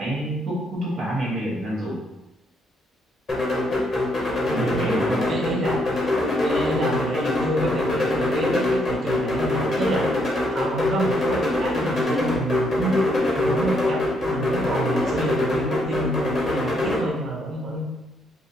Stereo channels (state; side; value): normal; both; correlation 0.73